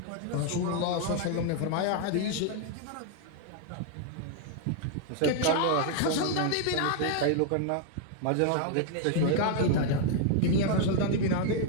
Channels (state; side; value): different; both; correlation 0.00